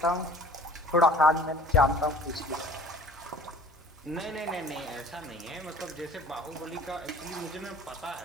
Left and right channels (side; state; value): both; normal; correlation 0.48